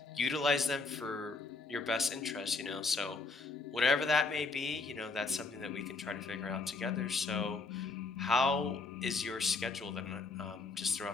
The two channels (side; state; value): right; quieter; 3.9 dB